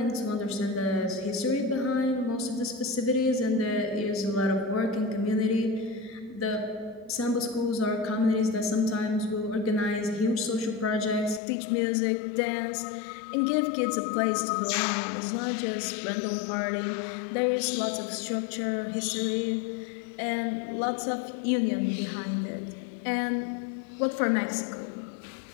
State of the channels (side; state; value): right; drops out; at 11.4 s